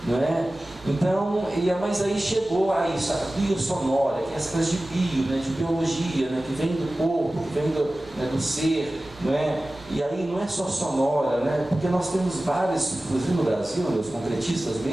Não é? Então, mas aí chegou a isso, a biosonora, que é essa coisa de bio, né, de biologia, né, que vem do corpo, que vem do ser, não é? E aí não é só sonora, né, porque nós temos várias, inclusive no Brasil, né, os concretistas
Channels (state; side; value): normal; both; correlation 0.96